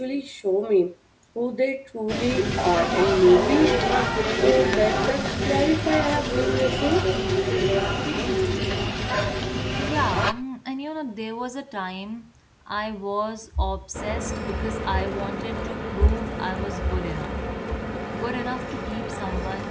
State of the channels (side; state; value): both; identical; correlation 1.00